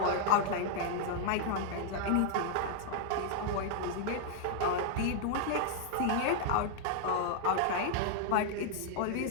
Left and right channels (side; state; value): both; different; correlation -0.01